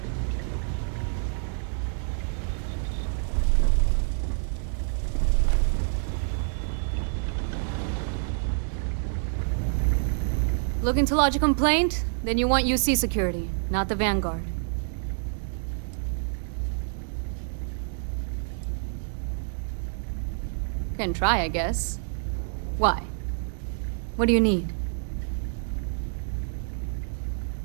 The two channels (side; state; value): left; silent; 60 dB below the other